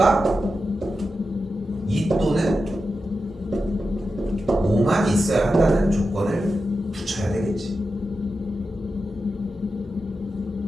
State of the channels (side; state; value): both; normal; correlation 0.90